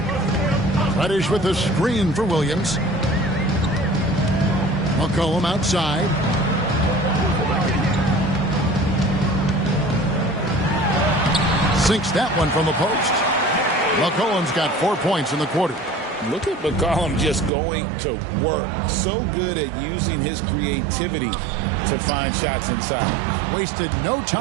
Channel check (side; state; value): left; drops out; at 17.5 s